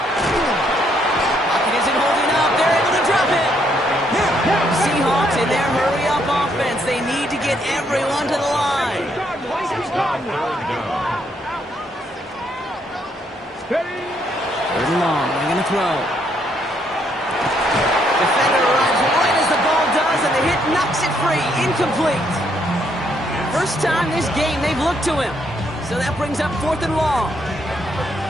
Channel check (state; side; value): normal; both; correlation 0.72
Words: Pocket isn't holding up. They're able to drop it. Seahawks in their hurry-up offense. They need to get everyone to the line. Third and long. They're going to throw. Defender arrives right as the ball does, and the hit knocks it free. Incomplete. First time this game they've looked to him. So that brings up 4th and long.